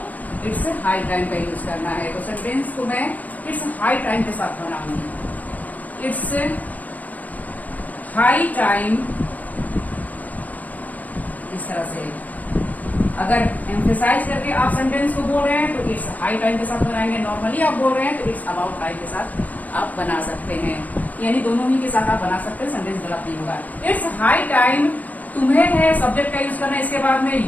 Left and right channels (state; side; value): late; right; 0.078 ms